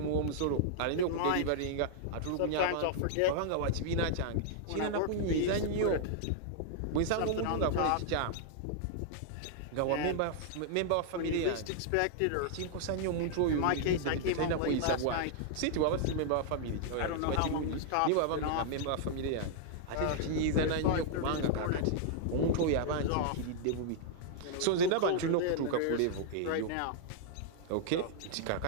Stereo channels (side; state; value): both; different; correlation -0.01